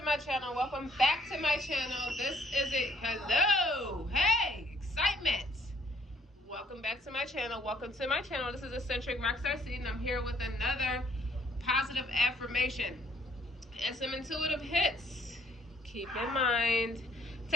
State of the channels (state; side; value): normal; both; correlation 0.64